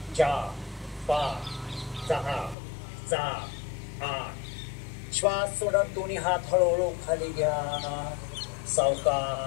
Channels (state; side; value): drops out; right; at 2.6 s